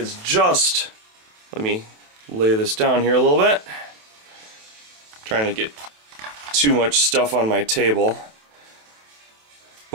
just, let me lay this down here a little bit. Trying to get too much stuff on my table.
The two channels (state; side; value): late; left; 27 ms